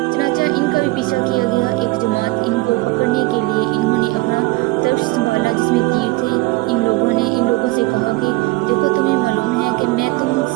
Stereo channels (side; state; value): left; quieter; 21.8 dB